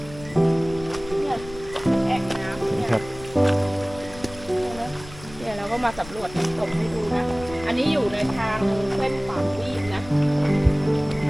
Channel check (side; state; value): left; noise; rumble, 17 dB below the sound